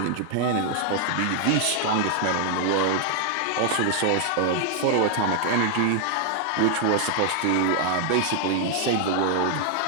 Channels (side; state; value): both; different; correlation 0.00